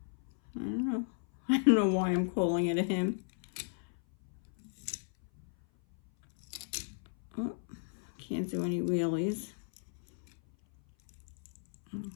I don't know why I'm calling it a him. Oh, can't do any wheelies. I'll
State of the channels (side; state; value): right; silent; 55 dB below the other